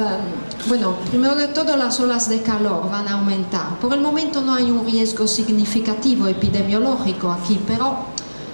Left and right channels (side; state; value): both; inverted; correlation -1.00